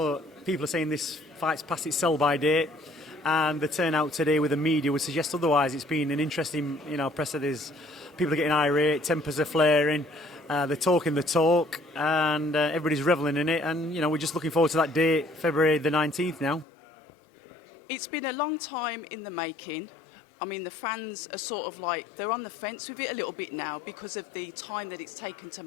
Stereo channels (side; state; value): right; drops out; at 16.7 s